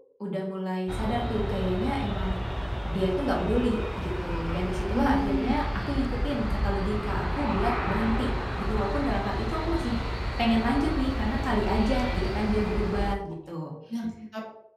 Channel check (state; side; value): identical; both; correlation 1.00